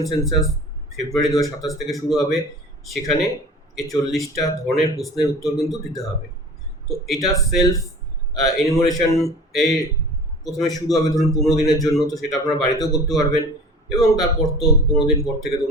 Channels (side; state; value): both; normal; correlation 0.41